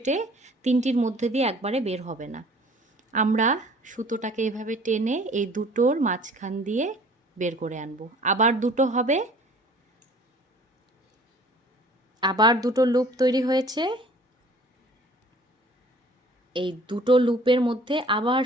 3টির মধ্যে দিয়ে একবারে বের হবে না। আমরা সুতোটাকে এভাবে টেনে এই দুটোর মাঝখান দিয়ে বের করে আনব। আবার দুটো হবে, আবার দুটো লুপ তৈরি হয়েছে। এই দুটো লুপের মধ্যে আবার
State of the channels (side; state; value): both; normal; correlation 0.51